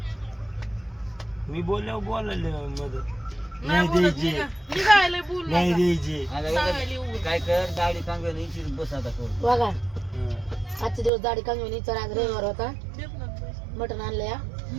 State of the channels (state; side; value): drops out; left; at 11.1 s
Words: मी बोलल्यावर बोलायला मदत नाही बोलत निघायला बोल नाही द्यायची. काय कर दाढी चांगली बस आता करू बघा हं. आजचे दिवस दाढी कमी चला आज रविवार होता मटण आणलं या